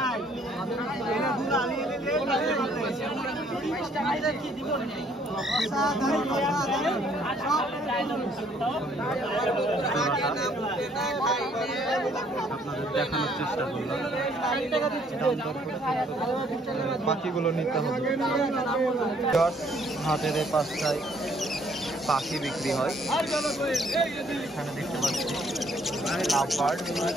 আপনাদের দেখানোর চেষ্টা করলাম। পাখিগুলো নিতে হবে। হাটের এই পাশটায় পাখি বিক্রি হয়, এখানে দেখতে পাচ্ছি লাভবার্ড,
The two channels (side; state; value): both; normal; correlation 0.64